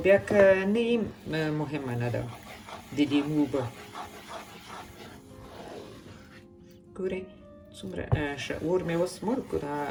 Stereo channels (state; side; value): identical; both; correlation 1.00